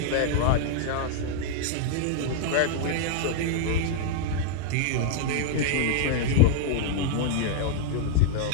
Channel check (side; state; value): both; different; correlation -0.01